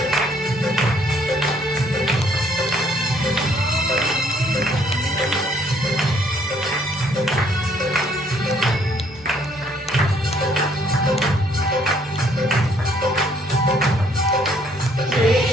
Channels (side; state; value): both; normal; correlation 0.65